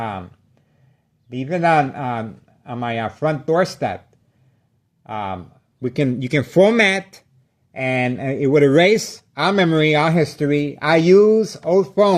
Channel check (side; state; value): both; identical; correlation 1.00